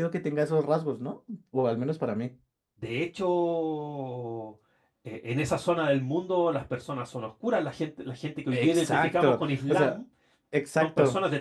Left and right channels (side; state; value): both; identical; correlation 1.00